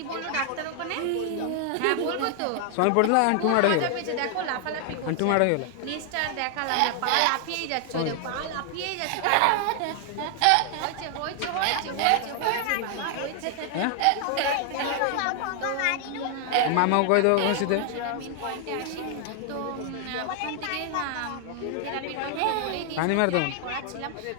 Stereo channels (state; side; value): different; both; correlation 0.00